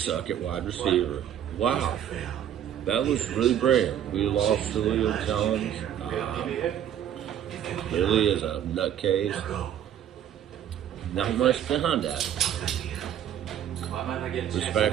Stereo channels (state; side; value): quieter; left; 10.1 dB